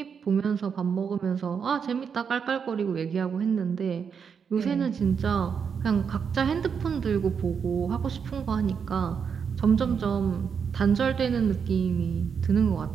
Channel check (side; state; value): left; quieter; 6.6 dB